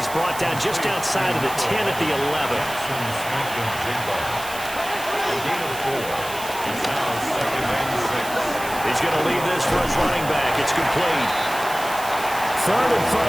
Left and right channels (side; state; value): right; noise; hiss, 12 dB below the sound